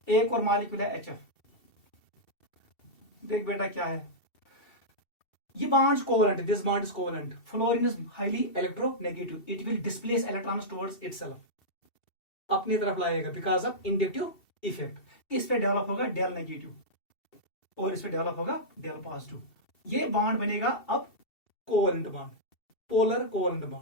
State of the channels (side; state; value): right; late; 2.7 ms